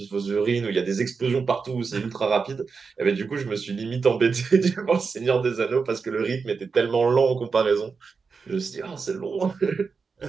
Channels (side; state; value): left; quieter; 5.1 dB